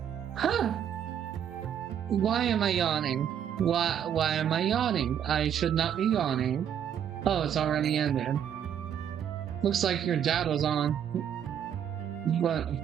Huh! Why am I yawning? Why am I yawning? I should not be yawning. Oh, it's already ended. Looks like your dad was on, but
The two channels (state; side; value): quieter; left; 9.1 dB